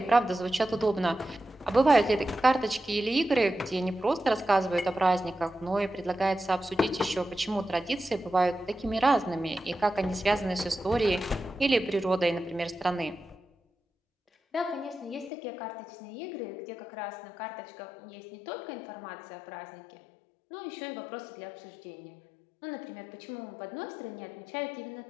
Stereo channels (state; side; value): drops out; right; at 15.3 s